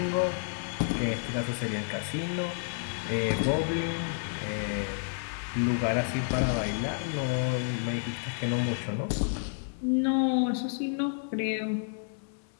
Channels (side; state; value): right; silent; digital silence